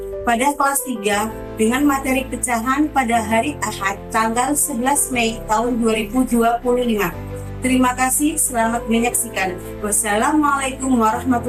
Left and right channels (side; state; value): both; identical; correlation 1.00